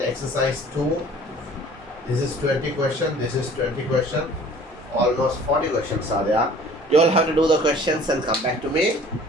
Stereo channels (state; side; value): normal; both; correlation 0.49